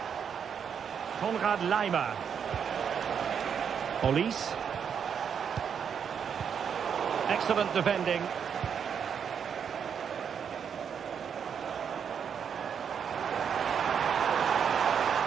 Konrad Laimer. Police. Excellent defending.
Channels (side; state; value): left; quieter; 7.4 dB